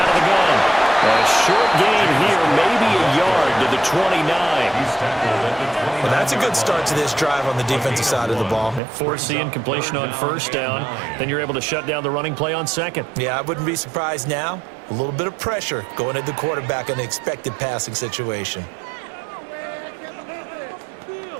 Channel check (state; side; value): drops out; left; at 8.8 s